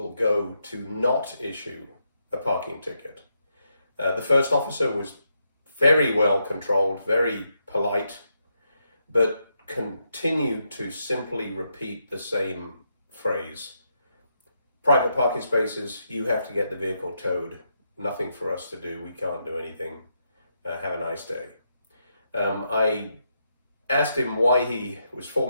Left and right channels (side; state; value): both; inverted; correlation -0.81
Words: go to not issue a parking ticket. The first officer was very well controlled, very polite, but continued to simply repeat the same phrase. Private parking spaces, you have to get the vehicle towed. Nothing for us to do. We can't do anything. Have a nice day. I asked him why he was